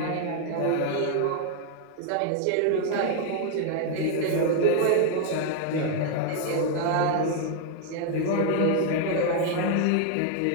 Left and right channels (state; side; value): different; both; correlation 0.00